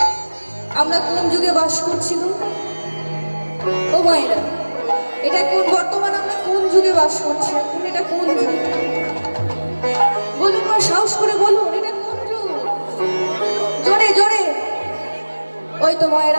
আমরা কোন যুগে বাস করছি গো ও মায়েরা এটা কোন বর্তমান আমরা কোন যুগে বাস করছি এখন এটা কোন যুগ বলুন মা সাহস করে বলুন এটা কোন যুগ জোরে জোরে ওই তো মায়েরা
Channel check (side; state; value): both; inverted; correlation -1.00